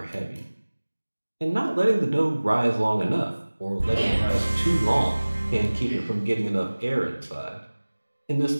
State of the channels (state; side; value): inverted; both; correlation -1.00